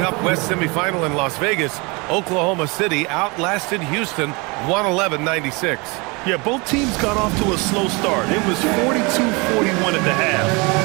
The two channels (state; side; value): quieter; left; 27.7 dB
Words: West semifinal in Las Vegas, Oklahoma City outlasted Houston 111-96. Yeah, both teams got off to a slow start. It was 42-41 at the half.